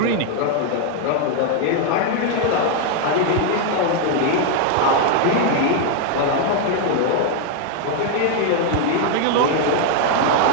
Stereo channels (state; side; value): different; both; correlation 0.00